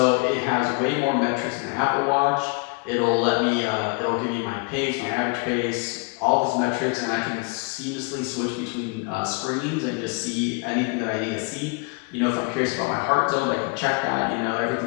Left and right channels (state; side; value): quieter; right; 32.7 dB